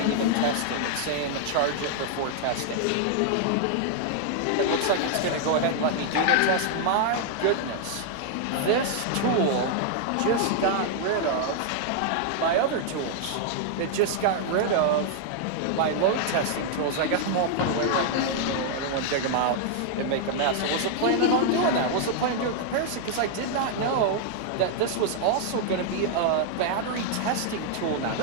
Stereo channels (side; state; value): both; different; correlation -0.01